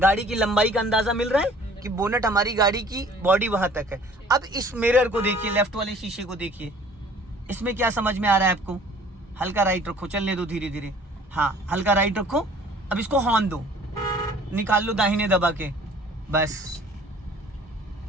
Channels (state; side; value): normal; both; correlation 0.52